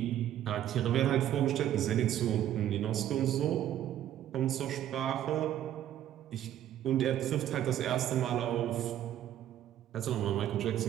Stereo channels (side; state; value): left; quieter; 11.6 dB